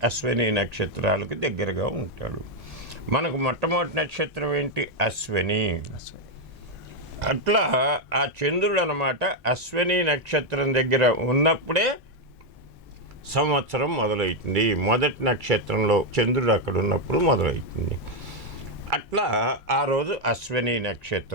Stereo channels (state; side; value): normal; both; correlation 0.02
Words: అశ్విని నక్షత్రాలకు దగ్గరగా ఉంటాడు. మనకు మొట్టమొదటి నక్షత్రం ఏంటి? అశ్విని. అట్లా ఆ చంద్రుడు అన్నమాట అశ్విని నక్షత్రం దగ్గర ఉన్నప్పుడే సంవత్సరం మొదలవుతుంది. మొదటి నక్షత్రంలో చంద్రుడు అక్కడ ఉన్నప్పుడు మొదలవుతుంది. అట్లా ఆ రోజు అశ్విని